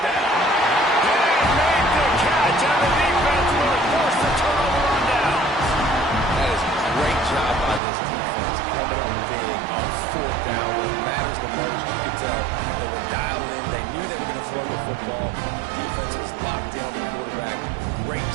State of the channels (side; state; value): left; drops out; at 7.8 s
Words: down. They made the catch, and the defense will force the turnover on down. That is a great job by this defense coming up big on 4th down when it matters the most. You could tell they were dialed in. They knew they were going to throw the football. Defense was locked down the quarterback. Great